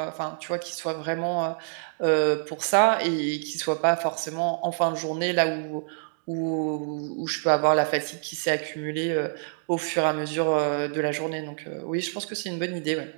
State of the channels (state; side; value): silent; left; digital silence